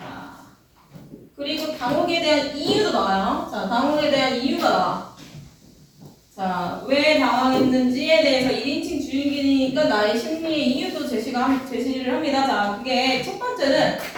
그리고 당혹에 대한 이유도 나와요. 자, 당혹에 대한 이유가 나와. 자, 왜 당황했는지에 대해서 1인칭 주인공이니까 나의 심리의 이유도 제시를 합니다. 자, 그게 첫 번째는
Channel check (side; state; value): both; identical; correlation 1.00